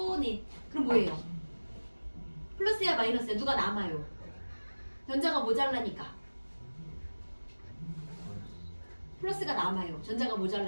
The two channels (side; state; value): both; inverted; correlation -1.00